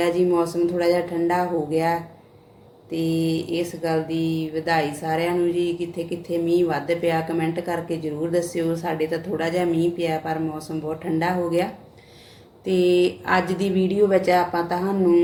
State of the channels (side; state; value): both; identical; correlation 1.00